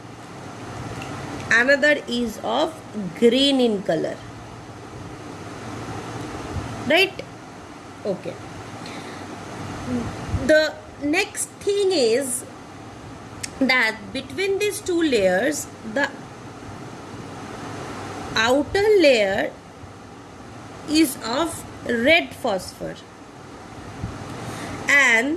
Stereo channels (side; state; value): both; identical; correlation 1.00